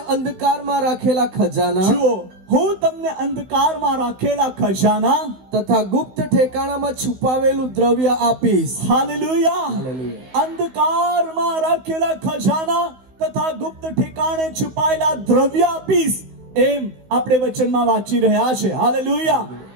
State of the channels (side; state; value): left; late; 16 ms